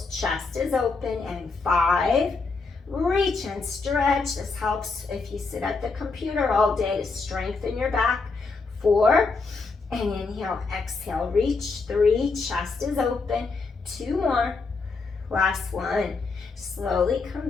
Chest is open. And 5, reach and stretch. This helps if you sit at the computer all day to strengthen your back. 4, and inhale, exhale, reach. 3, chest is open. 2 more. Last one. Slowly come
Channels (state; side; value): quieter; right; 4.2 dB